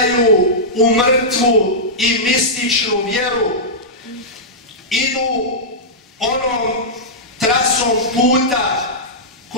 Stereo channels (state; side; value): normal; both; correlation -0.12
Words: u mrtvu i mističnu vjeru. Idu onom trasom puta